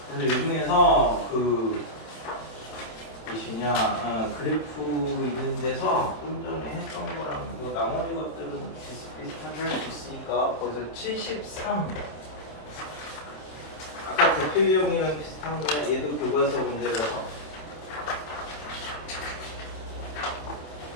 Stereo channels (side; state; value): right; late; 27 ms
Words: 그래서 요즘에서 그 무엇이냐 그래프 있는 데서 좀 전에 했던 거랑 그 나머지 것들은 비슷비슷하게 할 수 있으니까 거기서 73 아까 대표 유형이랑 비슷한 거야. 얘도 교과서 문제라서